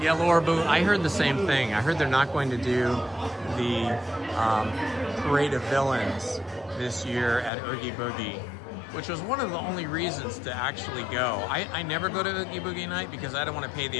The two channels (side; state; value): right; drops out; at 7.5 s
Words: Yeah, Laura Boo, I heard the same thing. I heard they're not going to do the Parade of Villains this year at Oogie Boogie, which was one of the only reasons to actually go. I never go to Oogie Boogie night because I don't want to pay